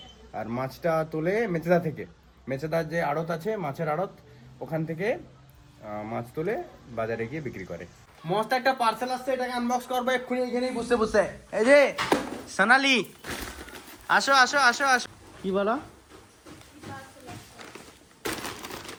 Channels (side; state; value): both; identical; correlation 1.00